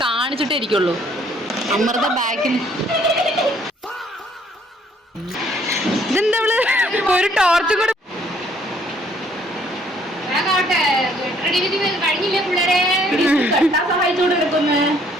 കാണിച്ചിട്ടേ ഇരിക്കുള്ളൂ. അമൃത ബാക്കിൽ ഇതെന്താ ഒരു ടോർച്ചും കൂടെ.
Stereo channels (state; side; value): normal; both; correlation 0.64